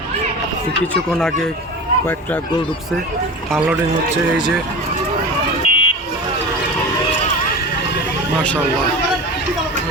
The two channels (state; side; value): normal; both; correlation 0.31